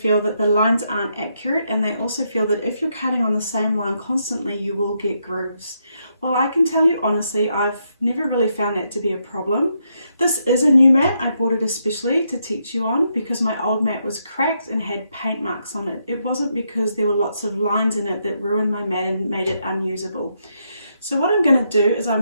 that the lines aren't accurate, and they also feel that if you're cutting on the same line constantly you will get grooves. Well, I can tell you honestly, I've never really found that to be a problem. This is a new mat. I bought it especially to teach you on because my old mat was cracked and had paint marks on it. It wasn't because there were lots of lines in it that ruined my mat and made it unusable. So what I'm going to do is I'm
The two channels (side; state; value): both; inverted; correlation -0.79